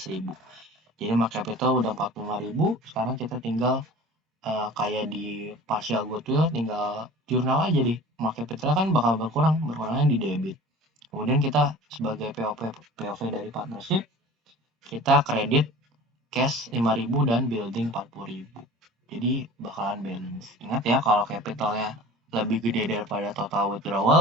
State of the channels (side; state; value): both; normal; correlation 0.41